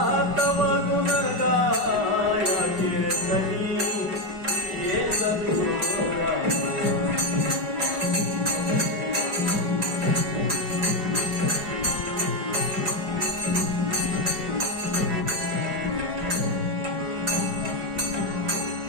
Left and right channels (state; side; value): late; left; 4.9 ms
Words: तव गुण गाया कीर्तनी